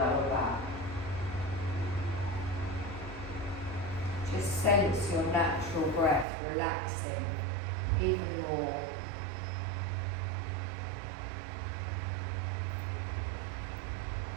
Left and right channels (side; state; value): left; drops out; at 6.2 s